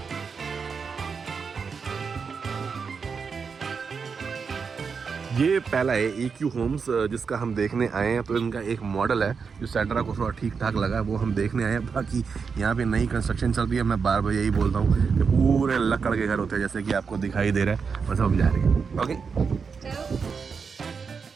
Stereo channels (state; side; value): quieter; left; 5.6 dB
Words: ये पहला है EQ होम्स जिसका हम देखने आए हैं। तो इनका एक मॉडल है जो सैंड्रा को थोड़ा ठीक ठाक लगा है, वो हम देखने आए हैं। बाकी यहाँ पे नई कंस्ट्रक्शन चल रही है। मैं बार बार यही बोलता हूँ कि पूरे लकड़ के घर होते हैं, जैसे कि आपको दिखाई दे रहा है। बस हम जा रहे हैं। ओके